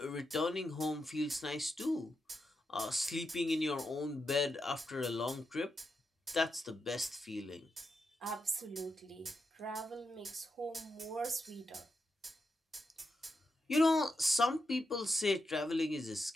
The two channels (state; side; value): normal; both; correlation 0.86